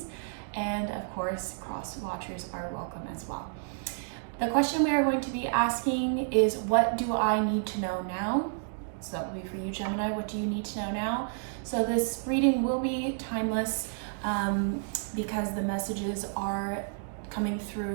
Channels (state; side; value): silent; left; digital silence